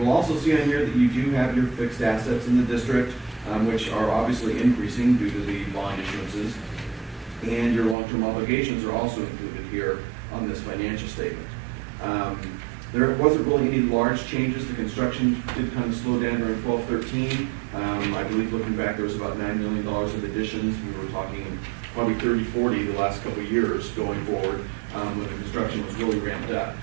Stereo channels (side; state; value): left; drops out; at 8.0 s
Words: also see on here that you do have your fixed assets in the district, which are obviously increasing due to the bond issuances. And your long-term obligations are also included here on this financial statement. There wasn't really any large changes. The construction did kind of slow down during 12-13. I believe looking back, there was about $9 million of additions. We were talking probably 30-40 the last couple of years going forward when the construction was really ramped up.